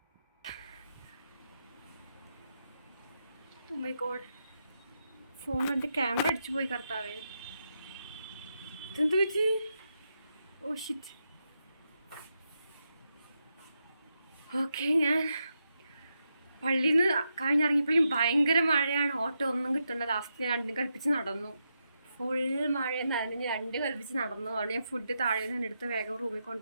ഓ മൈ ഗോഡ്, ഫോൺ എൻ്റെ ക്യാമറ അടിച്ചു പോയി കർത്താവേ. ഇതെന്ത് പറ്റി? Oh shit. ഓക്കെ, ഞാൻ പള്ളിയിൽ നിന്ന് കഴിഞ്ഞിറങ്ങിയപ്പോഴും ഭയങ്കര മഴയാണ്. ഓട്ടോ ഒന്നും കിട്ടണ്ട. ലാസ്റ്റ് ഞാൻ 2 കൽപ്പിച്ച് നടന്നു. ഫുൾ മഴ നനഞ്ഞ് 2 കൽപ്പിച്ച് നടന്നു. അവിടെ ഞാൻ ഫുഡ് താഴെ നിന്ന് എടുത്ത് വേഗം റൂമിൽ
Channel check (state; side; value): inverted; both; correlation -0.85